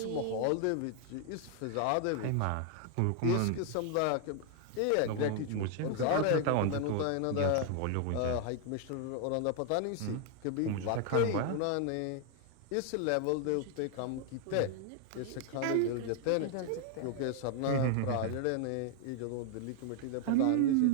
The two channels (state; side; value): different; both; correlation 0.00